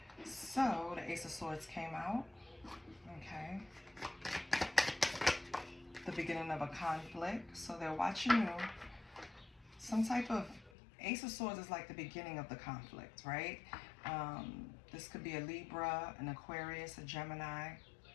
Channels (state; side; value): drops out; right; at 10.7 s